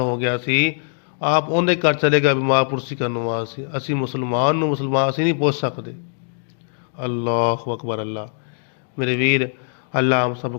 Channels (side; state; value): right; silent; digital silence